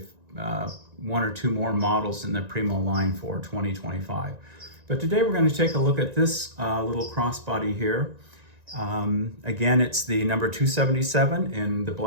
one or two more models in the Primo line for 2025. But today we're going to take a look at this little crossbody here. Again, it's the number 277 in the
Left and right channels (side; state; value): left; late; 1.9 ms